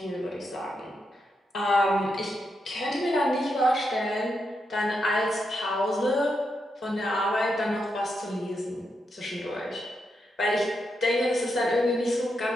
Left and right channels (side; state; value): both; normal; correlation 0.84